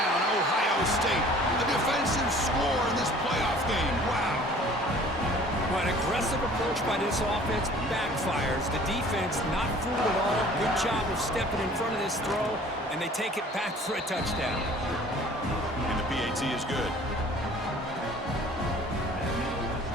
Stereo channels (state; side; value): normal; both; correlation 0.50